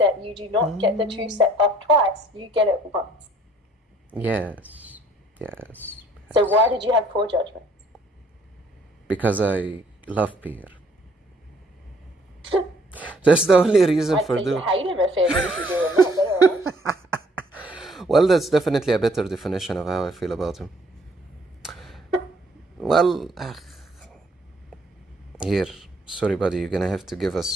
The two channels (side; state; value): both; normal; correlation 0.62